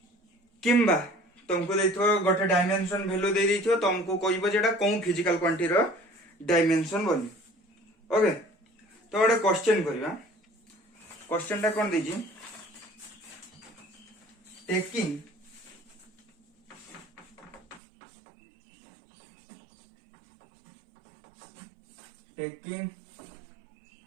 किंबा तुमको देथिबो गोटे डायमेंशन वैल्यू दे देथिबो तुमको कहइबो जेटा कोन फिजिकल क्वांटिटी रो डायमेंशन बोली ओके तो गोटे क्वेश्चन करबा क्वेश्चन टा कोन देजी taking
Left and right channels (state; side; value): drops out; left; at 17.8 s